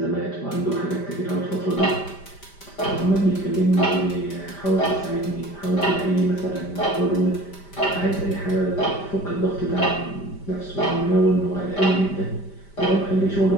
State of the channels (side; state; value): right; late; 5.1 ms